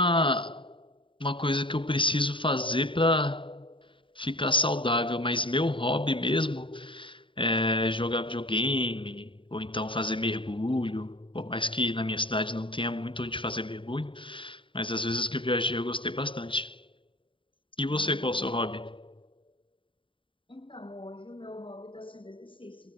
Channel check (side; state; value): right; late; 0.25 ms